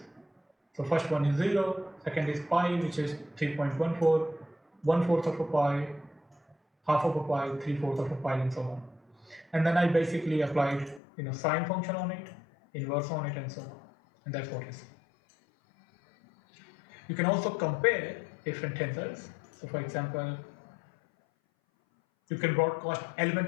So first one is 0, second is pi, which is 3.14, 1/4 of a pi, half of a pi, 3/4 of a pi, and so on. And then I basically applied sine function on it, inverse on it, and so on. And that's what it is. You can also compare different tensors. So for example, you can broadcast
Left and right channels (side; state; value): right; drops out; at 11.0 s